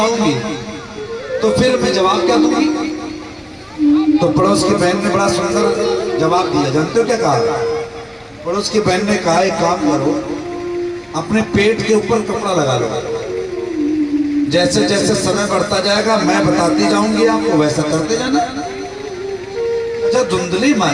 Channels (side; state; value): both; identical; correlation 1.00